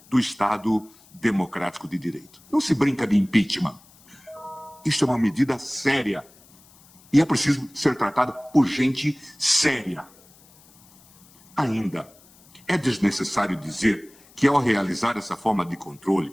do Estado democrático de direito. Não se brinca de impeachment. Isto é uma medida séria e é preciso ser tratada por gente séria. Ainda, é desnecessário dizer que, ao realizar essa forma de controle,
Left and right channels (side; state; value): left; noise; hiss, 27 dB below the sound